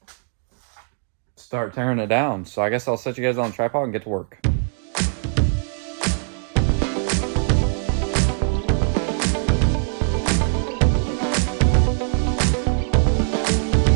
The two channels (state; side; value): silent; left; digital silence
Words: start tearing it down. So I guess I'll set you guys on a tripod and get to work.